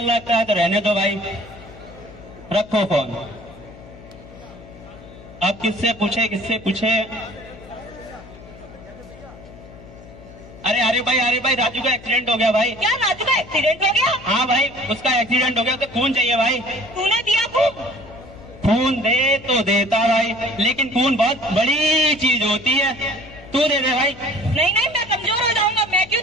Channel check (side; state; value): left; noise; hum, 19 dB below the sound